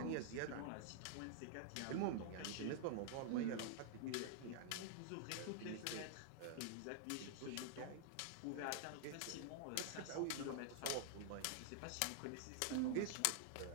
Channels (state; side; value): different; both; correlation -0.01